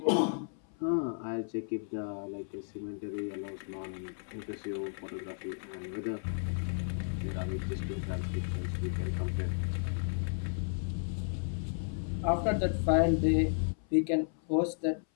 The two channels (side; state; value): right; silent; 55 dB below the other